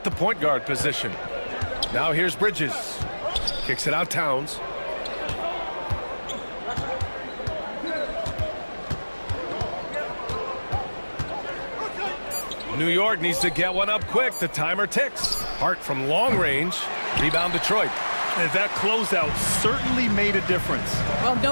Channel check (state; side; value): inverted; both; correlation -1.00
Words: the point guard position. Now here's Bridges. Kicks it out Towns. New York needs to get one up quick. The timer ticks. Hart from long range. Rebound Detroit. And that closeout certainly made a difference. Well,